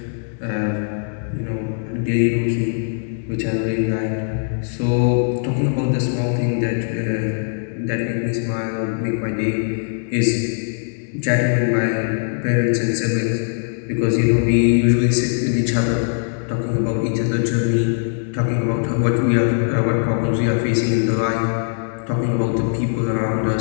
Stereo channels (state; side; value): silent; right; digital silence